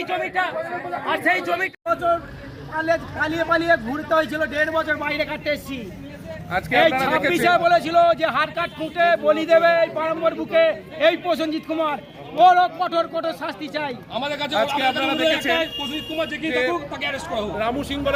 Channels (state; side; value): identical; both; correlation 1.00